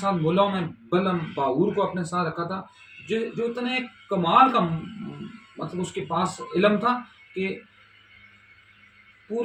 ملاؤں میں بلم باور کو اپنے ساتھ رکھا تھا، جو اتنے کمال کا مطلب اس کے پاس علم تھا کہ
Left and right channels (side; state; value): both; identical; correlation 1.00